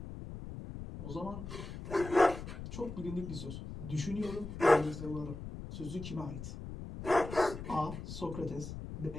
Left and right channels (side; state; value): left; noise; rumble, 9 dB below the sound